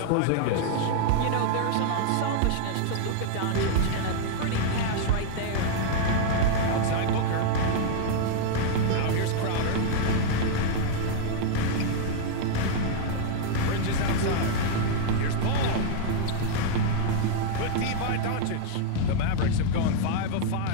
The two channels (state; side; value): different; both; correlation -0.01